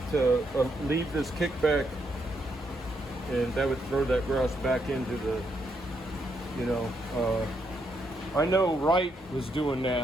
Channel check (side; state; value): both; normal; correlation 0.77